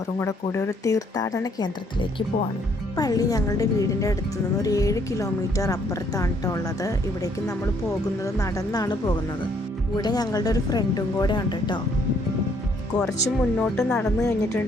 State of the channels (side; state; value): both; normal; correlation 0.67